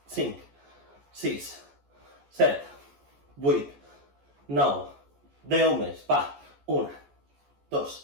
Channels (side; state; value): left; late; 14 ms